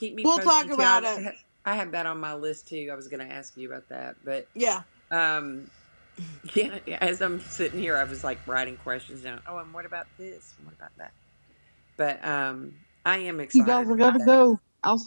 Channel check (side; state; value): both; inverted; correlation -1.00